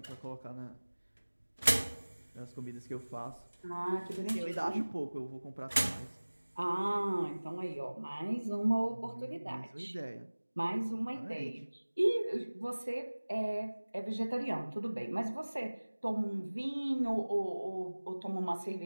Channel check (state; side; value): inverted; both; correlation -1.00